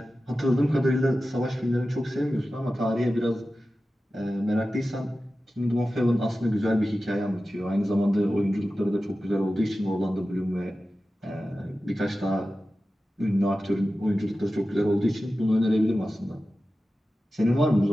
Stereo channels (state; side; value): normal; both; correlation 0.94